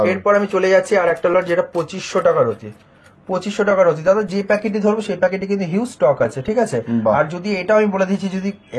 এরপর আমি চলে যাচ্ছি আর একটা লট, যেটা 2500 টাকা রতি। 2500 টাকা রতি দাদা। যে প্যাকেটই ধরবো সেই প্যাকেটে কিন্তু হিউজ স্টক আছে, ঠিক আছে। আর যদি এটাও আমি বলে দিচ্ছি, যদি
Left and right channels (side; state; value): both; identical; correlation 1.00